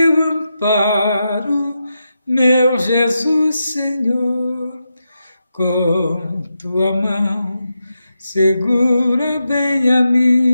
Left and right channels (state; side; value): inverted; both; correlation -0.87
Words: amparo, meu Jesus Senhor. Com tua mão segura bem a